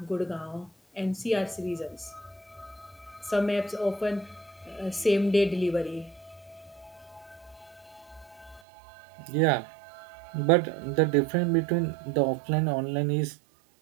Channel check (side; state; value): left; drops out; at 8.6 s